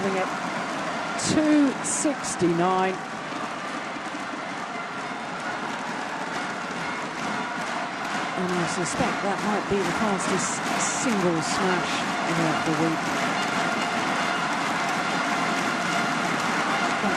it. 269. And I suspect that might be the fastest single smash of the week.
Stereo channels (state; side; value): identical; both; correlation 1.00